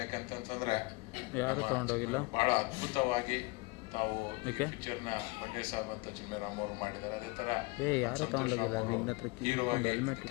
ಯಾಕಂತಂದ್ರೆ ಭಾಳ ಅದ್ಭುತವಾಗಿ ತಾವು ಪಿಕ್ಚರ್ನ ಬಂಡೆ ಸಾಬ್ ಅಂತ ಚಿನ್ಮಯರಾಮ್ ಅವರು ಮಾಡಿದ್ದಾರೆ. ಅದೇ ತರ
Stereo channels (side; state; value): right; quieter; 25.1 dB